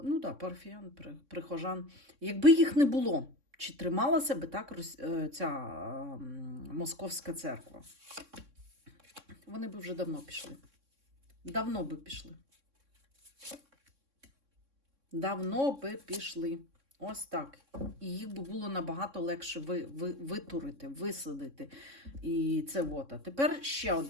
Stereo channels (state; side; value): late; left; 3.6 ms